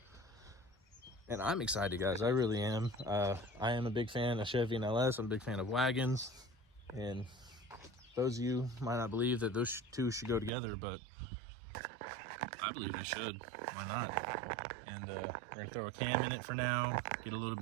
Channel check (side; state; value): left; drops out; at 10.5 s